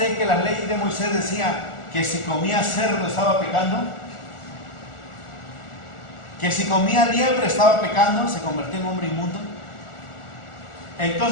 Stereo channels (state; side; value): late; right; 1.4 ms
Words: que las leyes de Moisés decían que si comía cerdo estaba pecando? Que si comía liebre estaba pecando, se convertía en hombre inmundo.